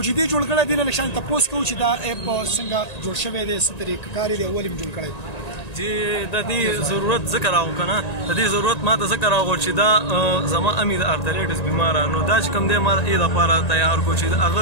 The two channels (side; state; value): right; late; 1.9 ms